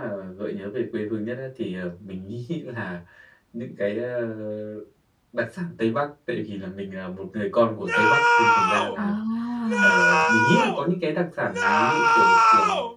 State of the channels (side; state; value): both; identical; correlation 1.00